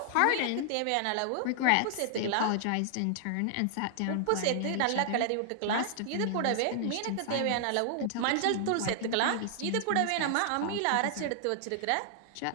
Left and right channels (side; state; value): both; different; correlation -0.01